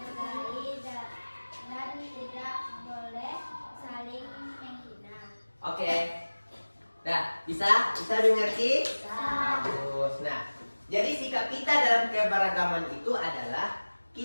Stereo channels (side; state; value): both; inverted; correlation -1.00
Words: dan tidak boleh saling menghina. Bisa? Bisa dimengerti? Bisa. Bagus. Nah, jadi sikap kita dalam keberagaman itu adalah